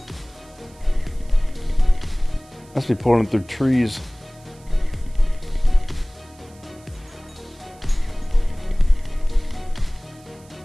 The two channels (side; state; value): right; noise; hiss, 27 dB below the sound